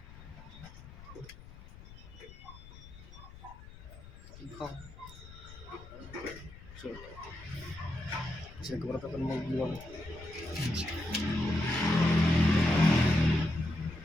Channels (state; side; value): noise; left; rumble, 17 dB below the sound